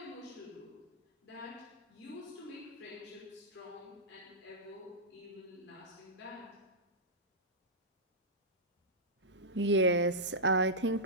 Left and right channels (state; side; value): normal; both; correlation -0.12